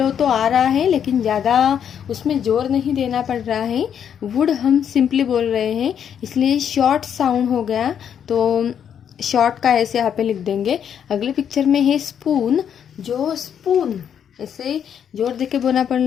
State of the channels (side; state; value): right; quieter; 8.5 dB